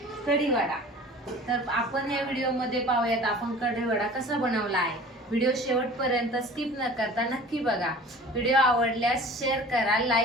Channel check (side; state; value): both; normal; correlation 0.43